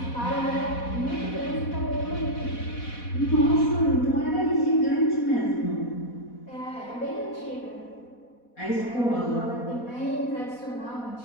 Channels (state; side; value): late; right; 4.1 ms